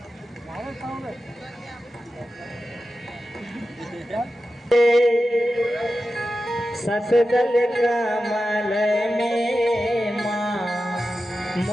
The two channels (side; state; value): both; normal; correlation 0.92